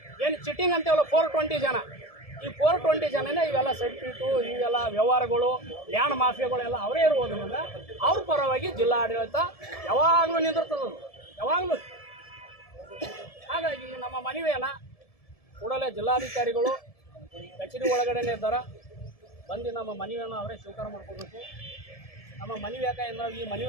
ಏನು ಚಿಟ್ಟಿಂಗ್ ಅಂತೇವಲ್ಲ 420 ಜನ. ಈ 420 ಜನನೇ ಇವೆಲ್ಲ ಸರ್ಟಿಫಿಕೇಟು ಇವೆಲ್ಲ ವ್ಯವಹಾರಗಳು ಲ್ಯಾಂಡ್ ಮಾಫಿಯಾಗಳೆಲ್ಲ ಅವರೇ ಇರುವುದರಿಂದ ಅವ್ರ ಪರವಾಗಿ ಜಿಲ್ಲಾ ಆಡಳಿತ ಯಾವಾಗಲೂ ನಿಂದಿರ್ತದೆ, ಯಾವಾಗಲೂ. ಹಾಗಾಗಿ ನಮ್ಮ ಮನವಿಯನ್ನು ಕೂಡಲೇ ಜಿಲ್ಲಾಧಿಕಾರಿಗಳು ಕಚೇರಿ ಒಳಗಡೆನೇ ಇದ್ದಾರೆ, ಬಂದು ನಮ್ಮ ಮನವಿಯನ್ನು ಅವರೇ ಸ್ವೀಕಾರ ಮಾಡ್ಕೋಬೇಕು. ನಮ್ಮ ಮನವಿ ಯಾಕಂದ್ರೆ ಈ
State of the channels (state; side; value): late; right; 1.7 ms